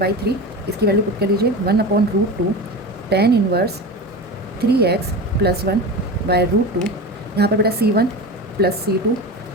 इसकी वैल्यू पुट कर लीजिए 1/√2 tan इनवर्स 3x प्लस 1/√2, यहाँ पर बेटा C1 प्लस C2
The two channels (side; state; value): both; normal; correlation 0.27